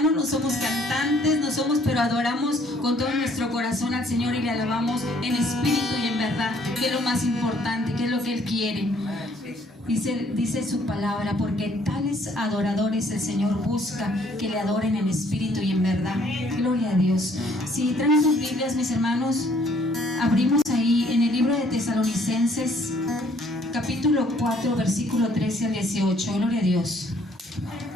no somos cantantes, no somos, pero adoramos con todo nuestro corazón al Señor y le alabamos en espíritu y en verdad, que es lo más importante, que es lo que Él quiere. Dice su palabra, porque tales adoradores el Señor busca que le adoren en espíritu y en verdad. Gloria a Dios. Si traen sus Biblias, mis hermanos, abrimos ahí en el libro de Tesalonicenses, capítulo 4, versículo 13 al 18. Gloria a Dios.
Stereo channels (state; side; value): normal; both; correlation 0.63